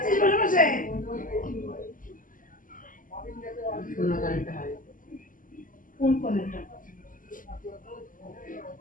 বসে বসে। কোন কারেন্টটা হয়? কোন কারেন্টটা?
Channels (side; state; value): right; late; 0.39 ms